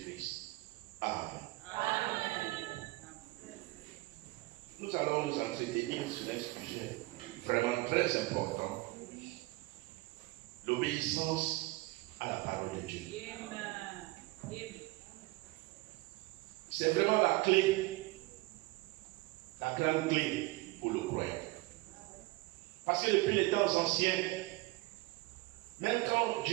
Amen. Amen. Nous allons nous entretenir sur un sujet vraiment très important, l'obéissance à la parole de Dieu. C'est vraiment la clé, la grande clé pour le croyant. Parce que depuis les temps anciens, même quand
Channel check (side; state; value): left; quieter; 21.6 dB